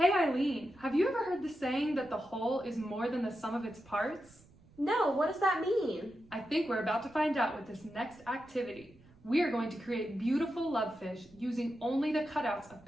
Eileen, have you ever heard the saying that the whole is more than the sum of its parts? No, what does that mean? I think we're about to find out with this next activity. We are going to create beautiful love fish using only the cutouts of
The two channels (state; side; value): noise; right; rumble, 26 dB below the sound